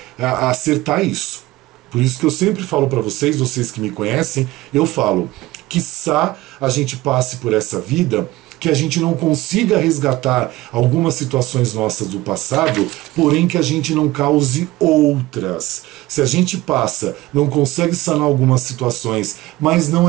acertar isso. Por isso que eu sempre falo para vocês, vocês que me conhecem, eu falo, quiçá a gente passe por essa vida que a gente não consiga resgatar algumas situações nossas do passado, porém que a gente não cause outras. Se a gente passa, não consegue sanar algumas situações, mas não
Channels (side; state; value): left; quieter; 18.3 dB